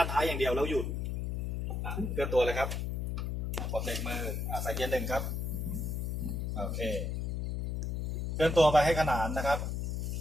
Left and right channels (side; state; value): left; noise; hum, 1 dB below the sound